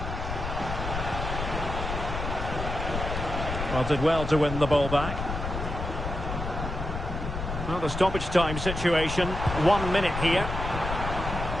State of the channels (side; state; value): left; noise; rumble, 5 dB below the sound